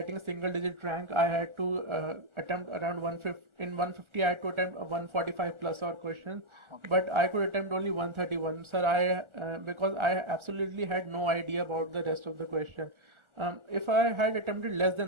a single digit rank, I had to attempt around 150. In 150, I had to attempt 145 plus or questions, Okay. but I could attempt only 131. Sir, because I absolutely had no idea about the rest of the question. If I had attempted less than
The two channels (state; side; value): late; left; 1.4 ms